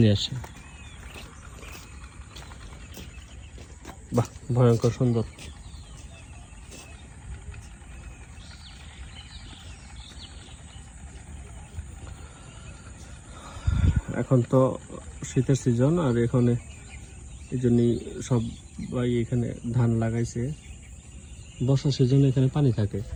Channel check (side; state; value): both; identical; correlation 1.00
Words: আসে। বাহ, ভয়ঙ্কর সুন্দর। এখন তো শীতের সিজন, আর এখানে এই জন্যই সবাই এখানে ধান লাগাইছে। বর্ষার সিজনে এখানে পানি থাকে।